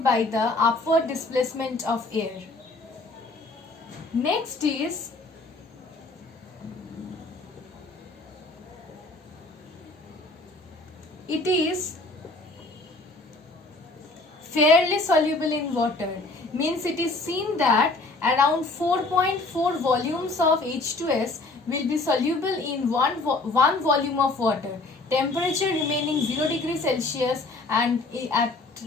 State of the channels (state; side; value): quieter; right; 3.2 dB